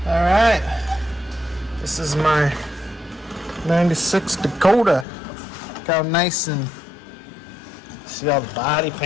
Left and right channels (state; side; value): drops out; right; at 5.1 s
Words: All right, this is my 96 Dakota. Look how nice, and see all the body